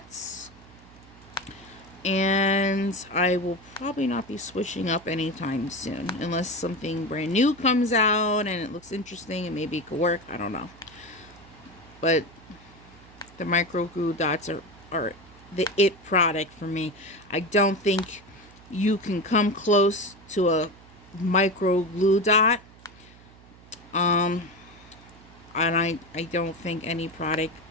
and I will probably not be switching up anytime soon unless something brand new comes out and it looks interesting and maybe it could work. I don't know. But the micro glue dots are the it product for me. I don't think you can come close to a micro glue dot. And I don't think any product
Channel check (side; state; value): right; noise; hum, 23 dB below the sound